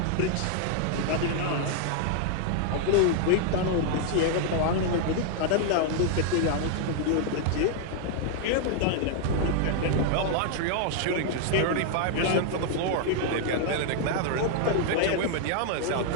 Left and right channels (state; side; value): different; both; correlation 0.00